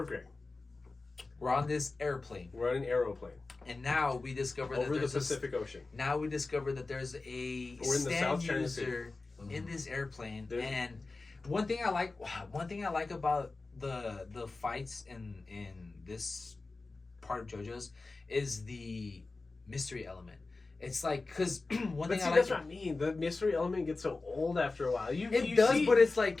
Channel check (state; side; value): quieter; right; 3.6 dB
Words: Grey. We're on this airplane, We're on an aeroplane and now we discover over that the there's Pacific Ocean. Now we discover that there's a We're in the stand South China user in this airplane, There's- and one thing I like about the fights in this part of JoJo's is the mystery element. It's like, because one But thing see, I like, that's what I mean. The mystery element gets so old after a while. You does, see, but it's